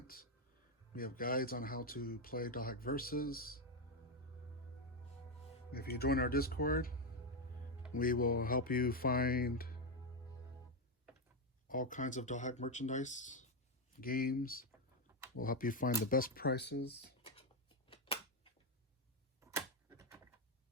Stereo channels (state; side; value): normal; both; correlation 0.07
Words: We have guides on how to play Dothack Versus. If you join our Discord, we will help you find all kinds of Dothack merchandise, games. We'll help you find the best prices.